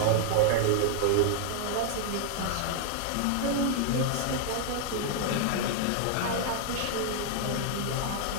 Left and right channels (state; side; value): different; both; correlation 0.00